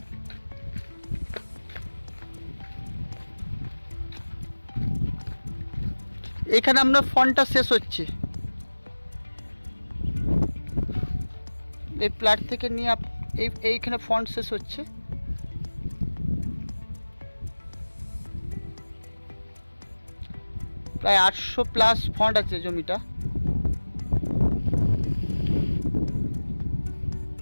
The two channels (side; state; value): both; inverted; correlation -1.00